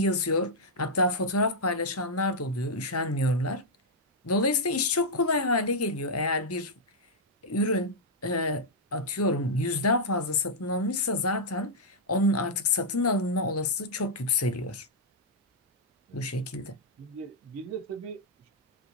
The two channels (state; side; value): normal; both; correlation -0.06